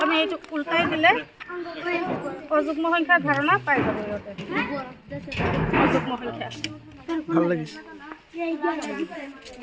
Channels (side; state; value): both; identical; correlation 1.00